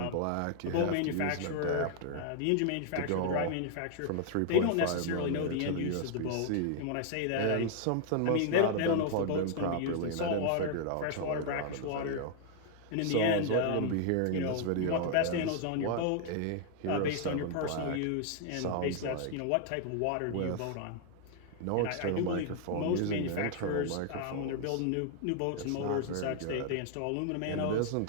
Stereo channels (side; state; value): both; different; correlation 0.00